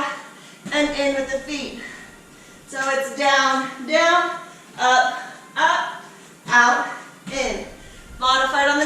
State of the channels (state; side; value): identical; both; correlation 1.00